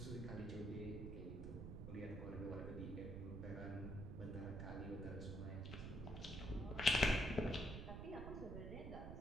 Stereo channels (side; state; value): right; noise; rumble, 6 dB below the sound